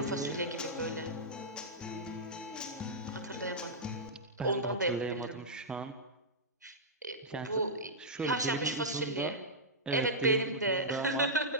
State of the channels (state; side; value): normal; both; correlation -0.11